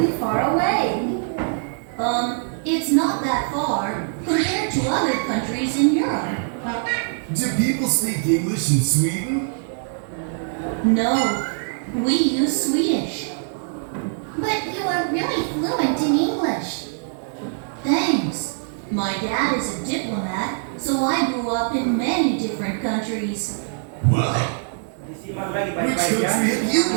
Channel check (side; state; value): left; silent; 64 dB below the other